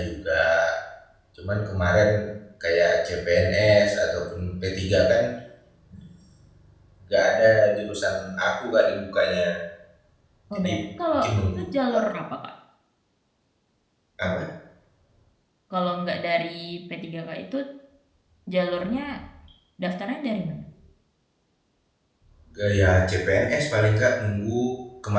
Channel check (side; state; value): both; identical; correlation 1.00